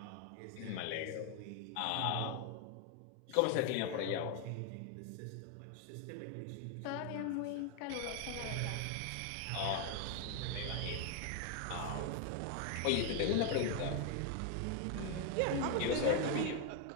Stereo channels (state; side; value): different; both; correlation 0.01